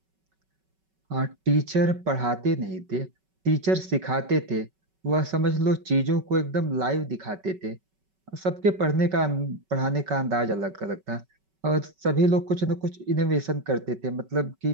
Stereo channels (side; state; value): left; late; 5.3 ms